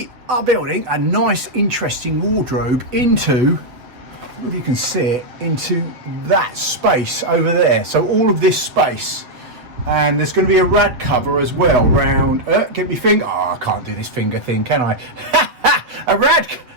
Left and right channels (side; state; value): left; late; 7.9 ms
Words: are building a nice, interesting wardrobe into, if you can see it, into that space over there. So all of this space, and there's going to be a rad cover as well round. Get me finger. Oh, I can't do this finger thing, can I? A rad.